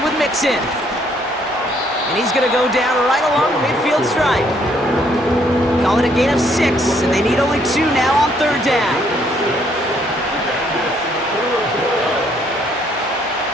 with Mixon. And he's going to go down right along the midfield stripe. Call it a gain of 6, and they need only 2 now on 3rd down.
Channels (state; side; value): normal; both; correlation 0.67